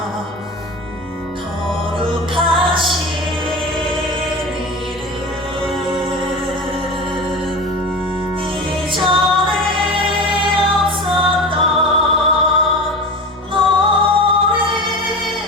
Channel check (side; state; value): both; normal; correlation 0.30